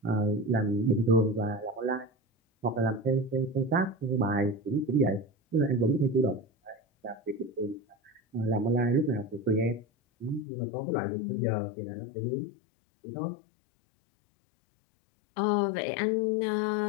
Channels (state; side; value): drops out; right; at 10.5 s